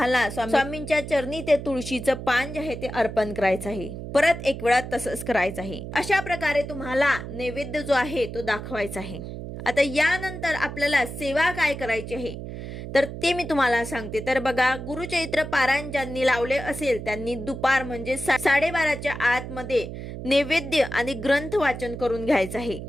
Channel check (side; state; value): right; noise; hum, 9 dB below the sound